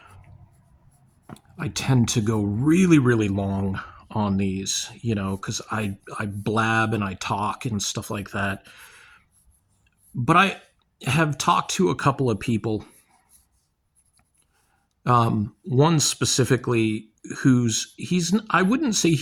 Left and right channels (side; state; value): both; identical; correlation 1.00